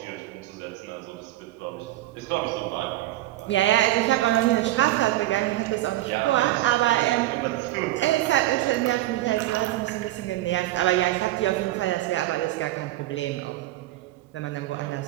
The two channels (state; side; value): quieter; left; 15.9 dB